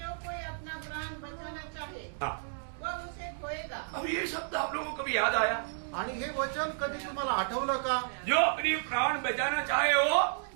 कोई अपना प्राण बचाना चाहे हाँ, वह उसे खोएगा। अब ये शब्द आप लोगों को कभी याद आया? आणि हे वचन कधी तुम्हाला आठवलं का? जो अपनी प्राण बचाना चाहे वो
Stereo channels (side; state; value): left; silent; digital silence